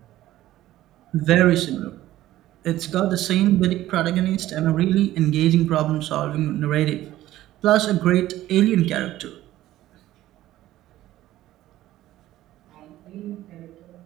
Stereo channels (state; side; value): quieter; left; 14.6 dB